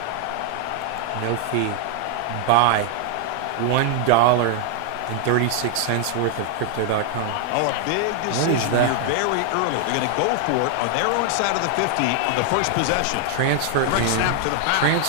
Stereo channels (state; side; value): different; both; correlation 0.00